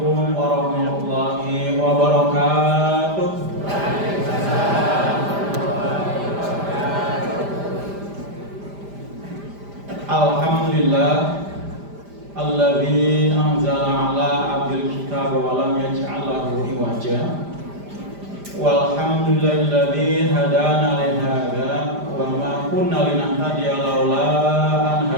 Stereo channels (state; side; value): late; left; 5.0 ms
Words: warahmatullahi wabarakatuh. Alhamdulillah alladzi anzala ala abdil kitab wa lam yaj'al lahu iwaja. Walhamdulillahilladzi hadana li hadza wa ma kunna linahtadiya laula an